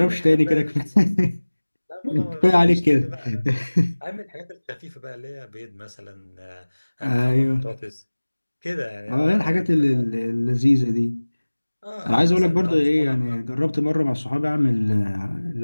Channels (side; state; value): both; inverted; correlation -1.00